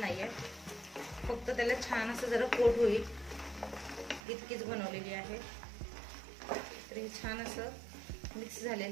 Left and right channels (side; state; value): left; drops out; at 4.2 s